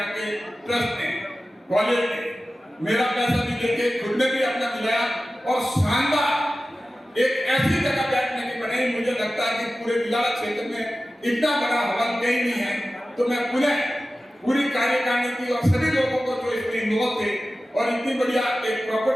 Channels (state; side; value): normal; both; correlation 0.95